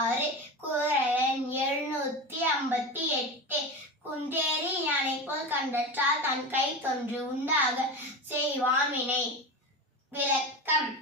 குறள் 758. குன்றேறி யானை போல் கண்டற்றால் தன் கை தொன்று உண்டாக செய்வான் வினை. விளக்கம்:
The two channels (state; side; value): normal; both; correlation 0.25